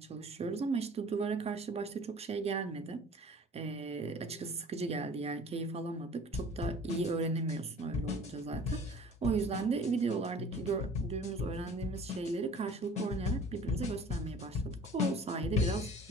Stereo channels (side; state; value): both; normal; correlation 0.46